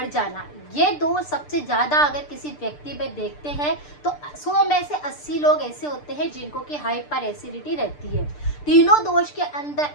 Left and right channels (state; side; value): late; right; 6.7 ms